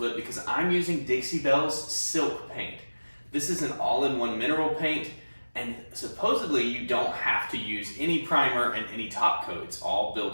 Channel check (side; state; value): both; inverted; correlation -1.00